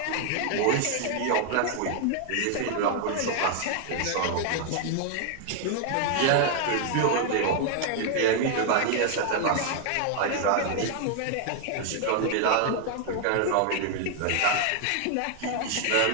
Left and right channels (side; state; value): both; different; correlation 0.00